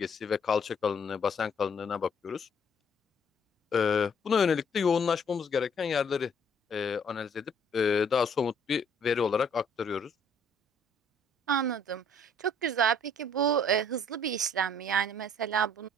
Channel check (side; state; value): both; normal; correlation 0.62